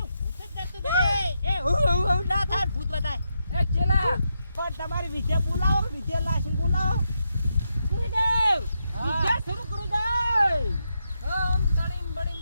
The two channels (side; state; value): both; inverted; correlation -0.84